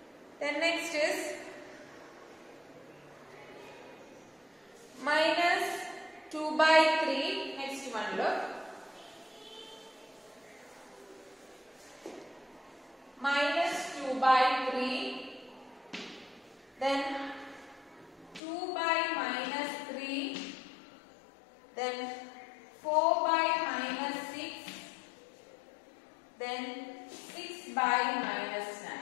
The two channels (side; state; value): right; drops out; at 18.4 s